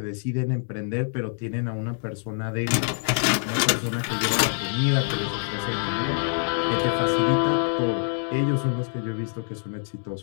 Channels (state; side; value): silent; right; digital silence